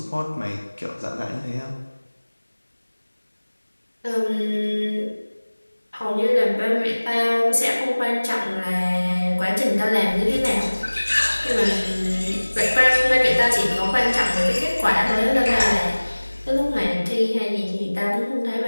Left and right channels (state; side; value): inverted; both; correlation -1.00